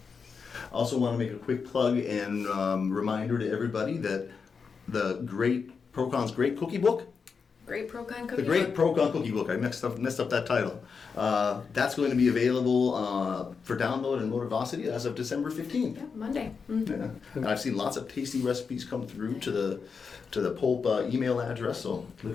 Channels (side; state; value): right; quieter; 5.5 dB